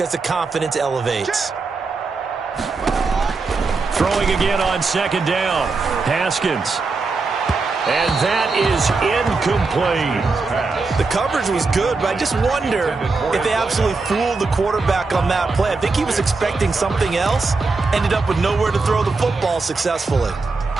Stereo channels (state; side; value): quieter; left; 4.0 dB